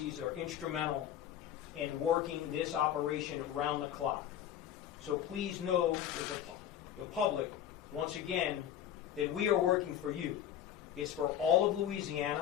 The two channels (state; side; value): quieter; right; 10.5 dB